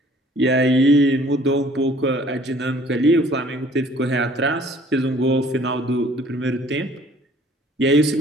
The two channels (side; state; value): both; normal; correlation 0.55